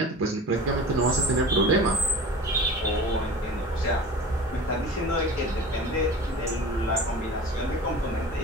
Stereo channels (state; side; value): normal; both; correlation 0.37